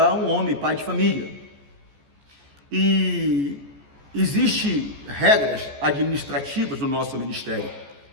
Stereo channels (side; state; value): left; late; 14 ms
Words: um homem, pai de família. E existem regras administrativas no nosso ministério.